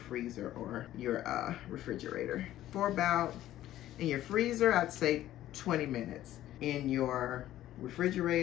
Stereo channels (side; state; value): right; quieter; 13.5 dB